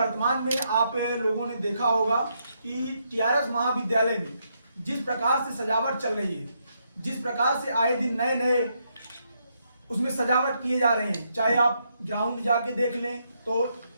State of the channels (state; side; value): inverted; both; correlation -0.78